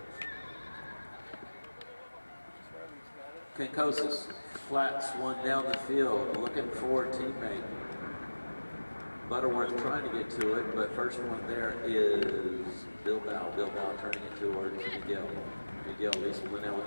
Kinkosis flats one down the field, looking for a teammate. Butterworth trying to get to it, but first one there is Bilbao. Bilbao turning it towards Miguel. Miguel Lisplanel with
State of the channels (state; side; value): inverted; both; correlation -1.00